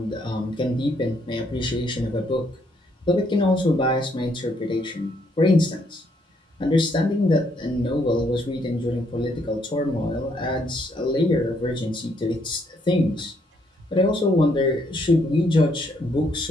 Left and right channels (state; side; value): normal; both; correlation 0.71